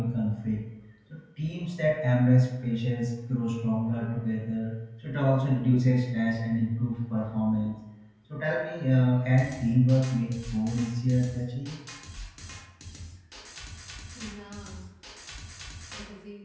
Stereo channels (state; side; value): identical; both; correlation 1.00